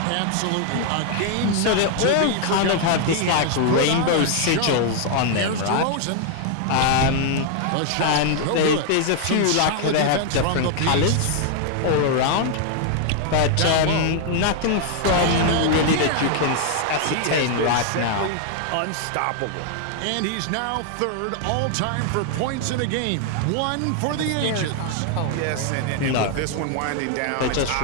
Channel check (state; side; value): different; both; correlation 0.00